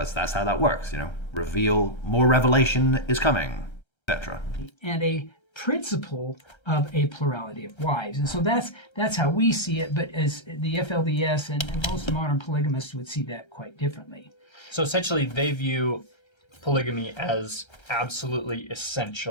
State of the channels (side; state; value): right; late; 1.3 ms